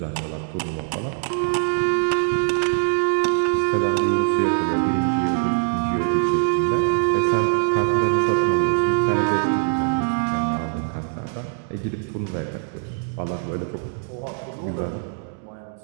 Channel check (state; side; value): silent; left; 64 dB below the other